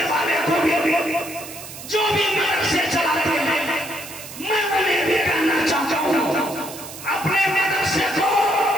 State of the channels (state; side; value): noise; right; hiss, 13 dB below the sound